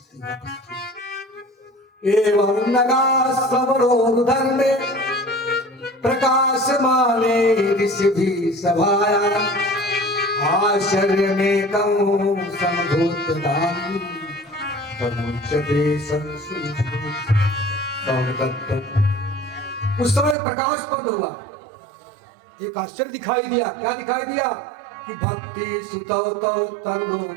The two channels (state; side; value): drops out; left; at 20.4 s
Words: वापस थी। एवं नगा समरोधर्मे प्रकाश माने ऋषि भी सभाया, आश्चर्य में कौं समभूत दानी, उस समय प्रकाश बंद हुआ। एक आश्चर्य दिखाई दिया। क्या दिखाई दिया? कि भक्ति सुतौ तौ तरुणो